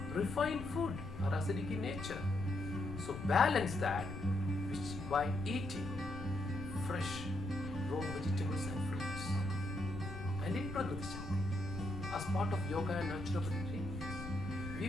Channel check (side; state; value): left; noise; rumble, 9 dB below the sound